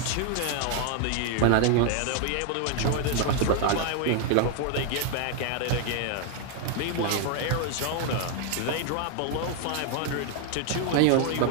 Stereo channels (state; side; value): different; both; correlation 0.01